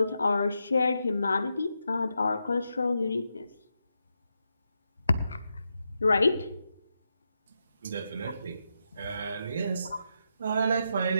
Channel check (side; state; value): both; inverted; correlation -0.85